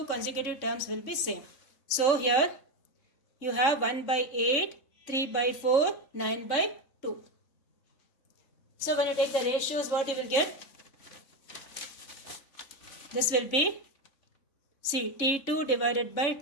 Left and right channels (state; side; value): late; right; 3.6 ms